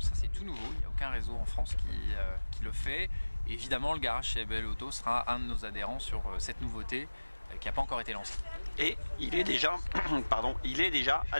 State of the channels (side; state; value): both; inverted; correlation -1.00